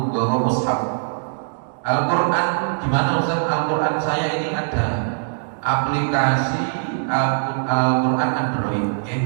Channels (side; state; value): left; silent; digital silence